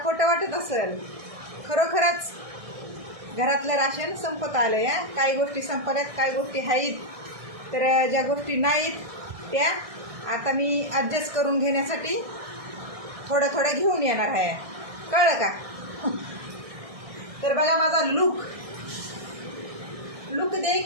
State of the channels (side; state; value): left; late; 1.6 ms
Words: खोटं वाटत असेल, खरोखरच घरातलं राशन संपत आलंय. काही गोष्टी संपल्यात, काही गोष्टी आहेत, तर ज्या गोष्टी नाहीत त्या आता मी ॲडजस्ट करून घेण्यासाठी थोडं थोडं घेऊन येणार आहे. कळलं का? तर बघा माझा लुक